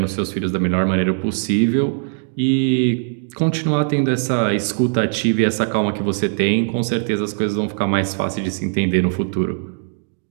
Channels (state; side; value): silent; left; digital silence